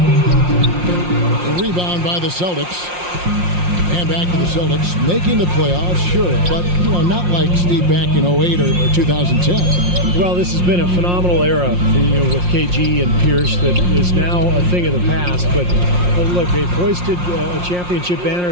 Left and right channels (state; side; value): late; left; 5.6 ms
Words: The rebound by the Celtics. And back to the Celtics, making the playoffs, sure, but, you know, not like Steve back in 08 or 2010. Well, this has been a phenomenal era, you know, with KG and Pierce that is now a thing of the past. But look, they've hoisted a championship